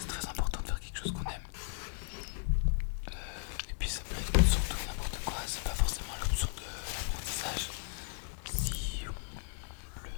très important de faire quelque chose qu'on aime. Et puis ça peut être surtout n'importe quoi, c'est pas forcément l'option de l'apprentissage. Si on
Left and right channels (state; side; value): silent; right; digital silence